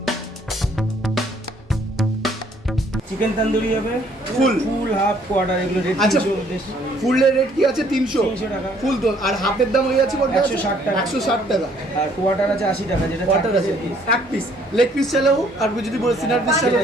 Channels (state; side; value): normal; both; correlation 0.62